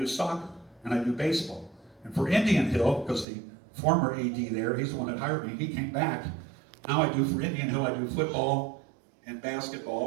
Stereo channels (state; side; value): drops out; left; at 3.2 s